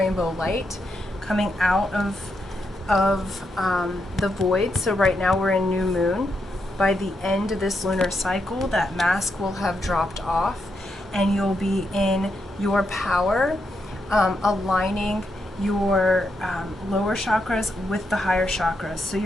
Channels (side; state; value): both; normal; correlation 0.82